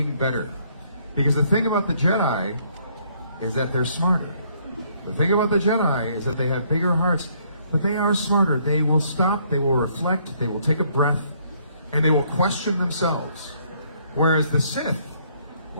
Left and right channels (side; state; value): both; inverted; correlation -0.67